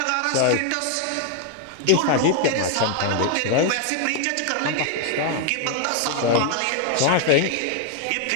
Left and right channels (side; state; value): both; different; correlation 0.00